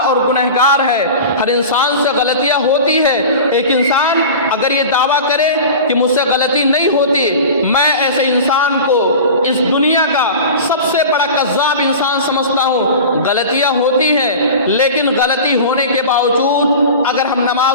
اور گنہگار ہے، ہر انسان سے غلطیاں ہوتی ہے. ایک انسان اگر یہ دعویٰ کرے کہ مجھ سے غلطی نہیں ہوتی، میں ایسے انسان کو اس دنیا کا سب سے بڑا کذاب انسان سمجھتا ہوں. غلطیاں ہوتی ہیں، لیکن غلطی ہونے کے باوجود اگر ہم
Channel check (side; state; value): both; inverted; correlation -0.34